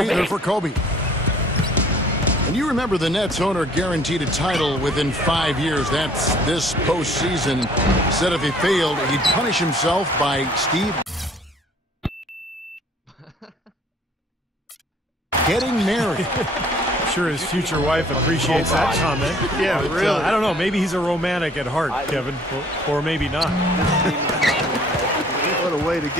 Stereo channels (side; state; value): both; normal; correlation 0.56